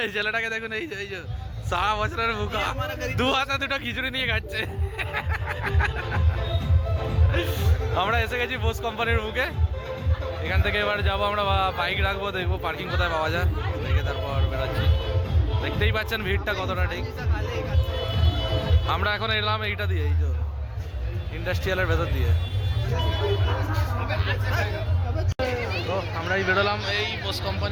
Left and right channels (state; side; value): identical; both; correlation 1.00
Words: এই ছেলেটাকে দেখুন, এই যে সারা বছরের মুখা, 2 হাতে 2টা খিচুড়ি নিয়ে খাচ্ছে। আমরা এসে গেছি বোস কোম্পানির মুখে। এখান থেকে এবার যাবো আমরা, বাইক রাখবো, দেখবো পার্কিং কোথায় পাওয়া যায়, দেখে তারপর বেরোচ্ছি। দেখতেই পাচ্ছেন ভিড়টা কতটা। ঠিক আমরা এখন এলাম এইটা দিয়ে, এই যে ইন্ডাস্ট্রিয়ালের ভেতর দিয়ে। তো আমরাই বেরোলাম, এই বোস